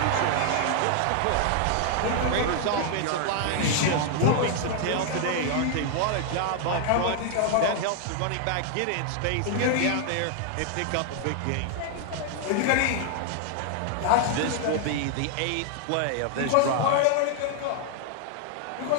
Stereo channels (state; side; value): different; both; correlation 0.00